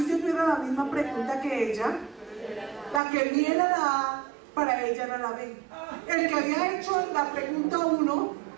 yo tuviera la misma pregunta que ella, la que vi era la A, para ella era la B. El que había hecho la pregunta 1,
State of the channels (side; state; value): left; drops out; at 3.0 s